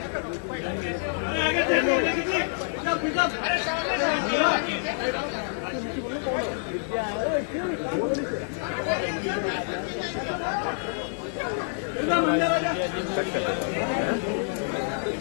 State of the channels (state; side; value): silent; right; digital silence